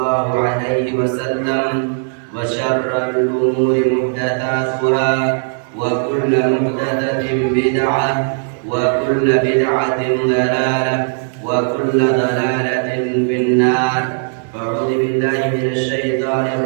عليه وسلم وشر الأمور محدثاتها وكل محدثة بدعة وكل بدعة ضلالة وكل ضلالة في النار. فأعوذ بالله من الشيطان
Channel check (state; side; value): silent; left; digital silence